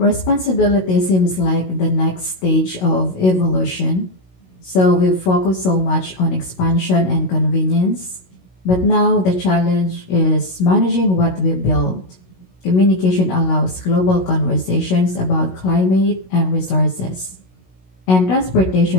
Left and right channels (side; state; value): right; late; 16 ms